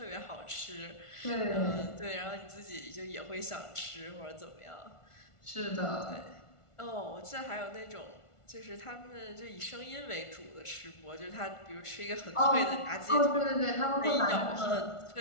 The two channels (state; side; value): late; right; 1.4 ms